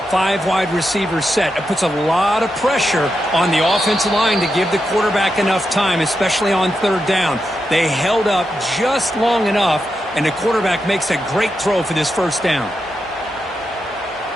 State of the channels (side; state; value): both; normal; correlation 0.86